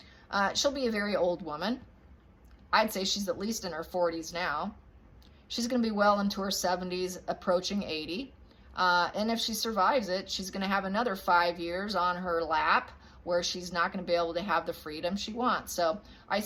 She'll be a very old woman. I'd say she's at least in her 40s now. She's going to be well into her 70s, approaching 80. And if she survives it, she's going to have another 5 years on her lap where she's not going to be able to have the freedom she wants. So I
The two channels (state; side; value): identical; both; correlation 1.00